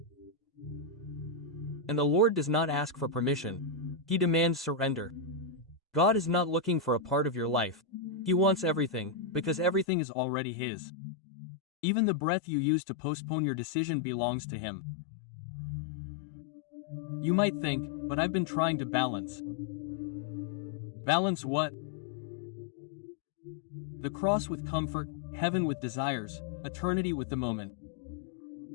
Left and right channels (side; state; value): right; drops out; at 9.9 s